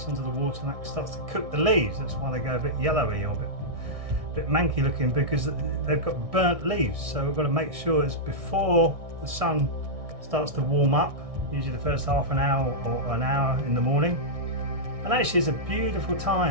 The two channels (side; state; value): left; late; 1.6 ms